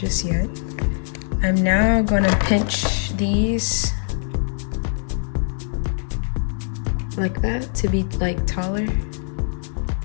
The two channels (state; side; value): silent; right; digital silence